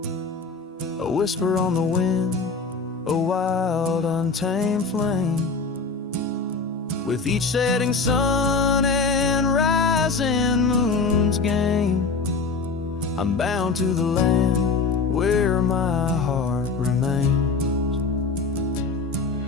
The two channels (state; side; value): quieter; right; 4.3 dB